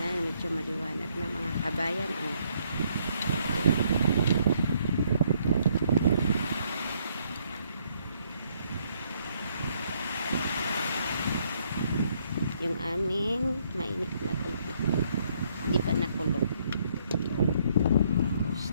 medyo maliwanag na mga kabayan. Yung aming mainit na tubig. Hindi pa nakulog. Tapos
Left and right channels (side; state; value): both; inverted; correlation -0.70